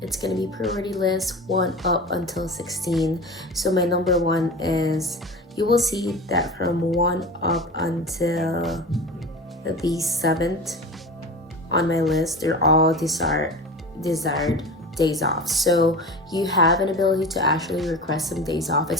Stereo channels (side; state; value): both; normal; correlation 0.32